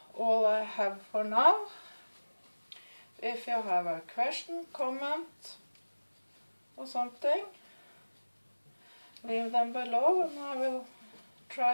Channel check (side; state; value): both; inverted; correlation -1.00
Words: all I have for now. If you have a question, comment or something, leave them below and I will